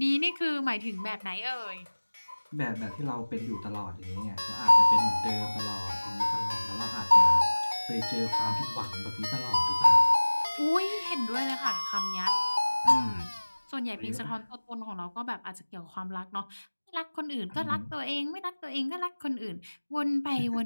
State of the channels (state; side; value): inverted; both; correlation -1.00